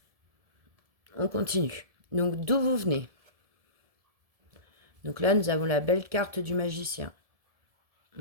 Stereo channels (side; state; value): left; late; 1.7 ms